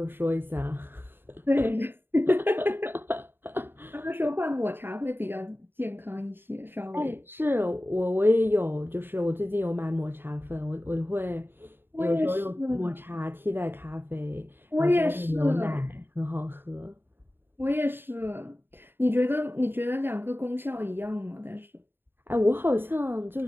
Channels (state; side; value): late; left; 0.10 ms